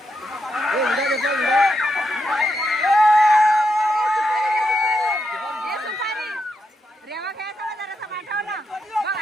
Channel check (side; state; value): both; normal; correlation 0.83